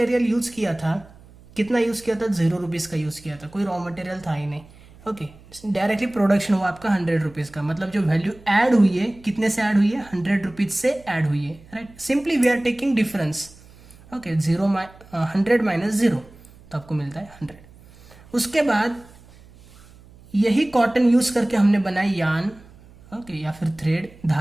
यूज किया था, कितना यूज किया था, 0 रुपीज का यूज किया था, कोई रॉ मटेरियल था ही नहीं। ओके, डायरेक्टली प्रोडक्शन हुआ आपका 100 रुपीज का, मतलब जो वैल्यू ऐड हुई है कितने से ऐड हुई है, 100 रुपीज से ऐड हुई है, right. Simply we are taking difference. Okay, 100 minus 0 तो आपको मिलता है 100। उसके बाद यही कॉटन यूज करके हमने बनाई यार्न, ओके, या फिर थ्रेड,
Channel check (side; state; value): right; noise; hum, 24 dB below the sound